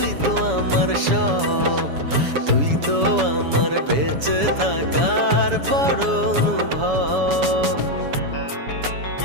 তো আমার সব, তুই তো আমার বেঁচে থাকার বড় অনুভব।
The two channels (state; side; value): late; left; 7.1 ms